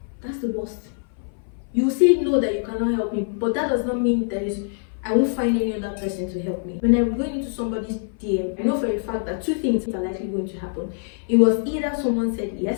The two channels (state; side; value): silent; right; 58 dB below the other